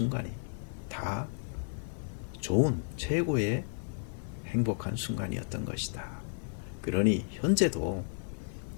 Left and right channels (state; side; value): silent; right; 56 dB below the other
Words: 다 좋은 최고의 행복한 순간이었던 것이다. 그러니 현재도